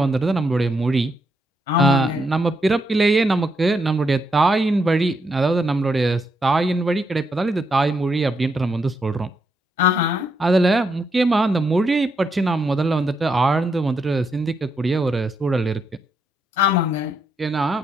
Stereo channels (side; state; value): both; normal; correlation 0.79